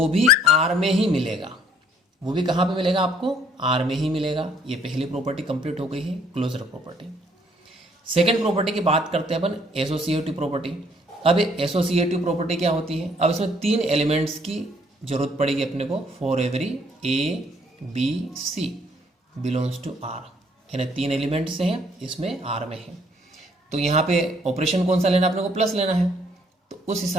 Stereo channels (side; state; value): both; normal; correlation 0.64